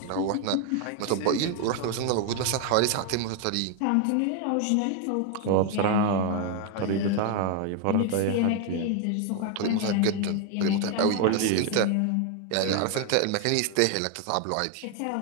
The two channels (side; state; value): both; different; correlation 0.00